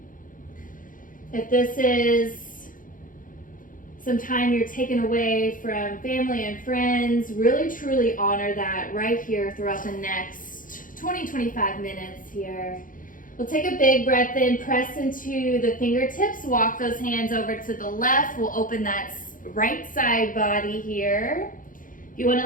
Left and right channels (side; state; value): right; late; 0.39 ms